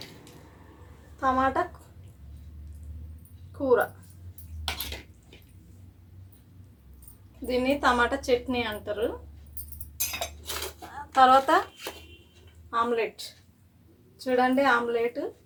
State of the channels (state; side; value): identical; both; correlation 1.00